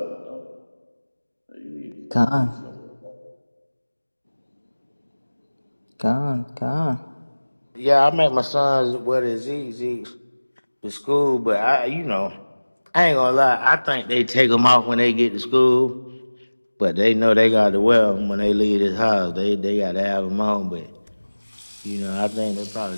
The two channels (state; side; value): inverted; both; correlation -1.00